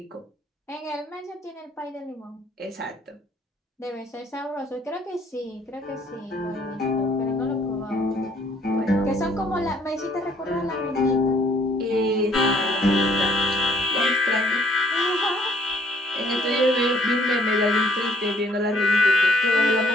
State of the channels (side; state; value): both; normal; correlation 0.62